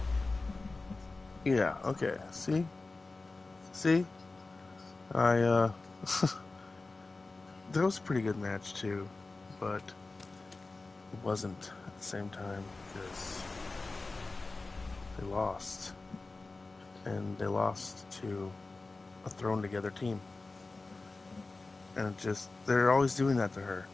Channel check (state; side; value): quieter; right; 3.5 dB